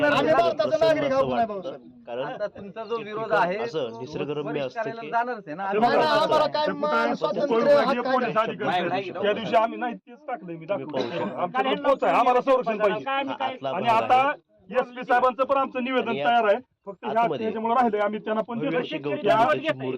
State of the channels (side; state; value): both; identical; correlation 1.00